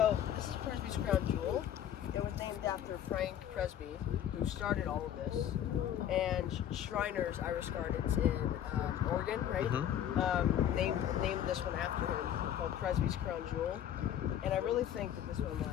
this is Presby's crown jewel. It was named after Frank Presby, who started all of this, and Shriners Iris Gardens in Oregon, right? Named this one after him, called Presby's crown jewel. And I really think that this one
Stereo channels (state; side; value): quieter; right; 10.4 dB